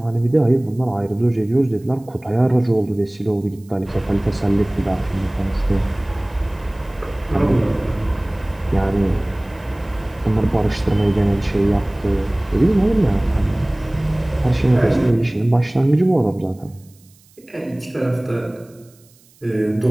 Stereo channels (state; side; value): noise; right; hiss, 30 dB below the sound